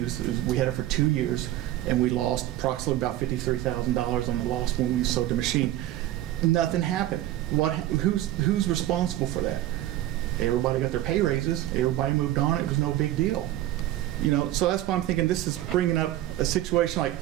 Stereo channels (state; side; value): quieter; left; 14.3 dB